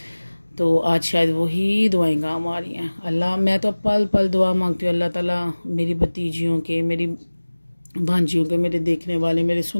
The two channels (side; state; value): both; inverted; correlation -1.00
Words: तो आज शायद वही दुआएं काम आ रही हैं। अल्लाह, मैं तो पल पल दुआ मांगती हूँ, अल्लाह ताला मेरी भतीजियों के, मेरी भांजियों के, मेरे देखने वाले, मेरे